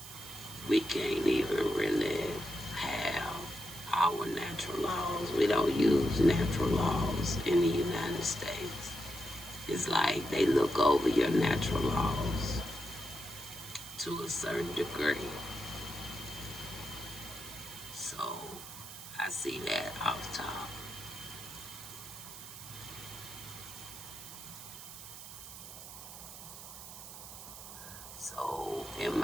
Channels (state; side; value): noise; right; hiss, 13 dB below the sound